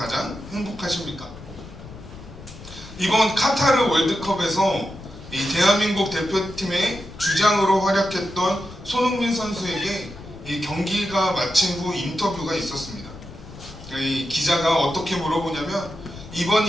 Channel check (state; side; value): noise; left; rumble, 16 dB below the sound